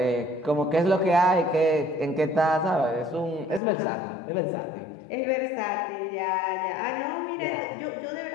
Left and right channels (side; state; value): right; drops out; at 3.6 s